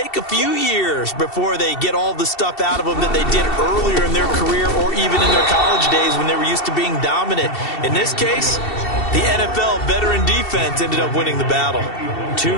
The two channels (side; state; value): right; late; 2.7 ms